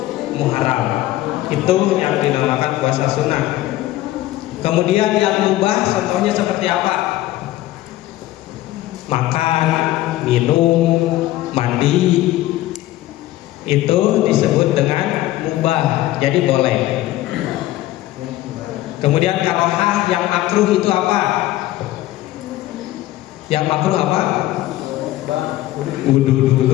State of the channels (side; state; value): right; quieter; 15.5 dB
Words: Muharram, itu yang dinamakan puasa sunnah. Kemudian yang mubah contohnya seperti apa? Makan, minum, mandi, itu disebut dengan mubah, jadi boleh. Kemudian karohah yang makruh itu apa? Yang makruh apa? Udu